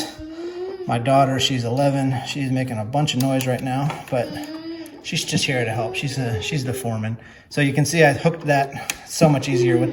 my daughter. She's 11. She's making a bunch of noise right now, but she's just here to help. She's the foreman. So you can see I hooked that so much easier with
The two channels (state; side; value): identical; both; correlation 1.00